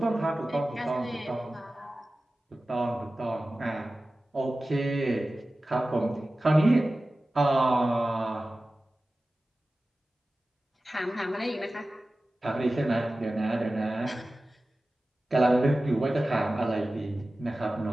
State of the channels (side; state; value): both; normal; correlation 0.96